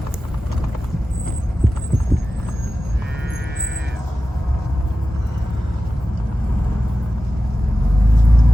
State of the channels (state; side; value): normal; both; correlation 0.93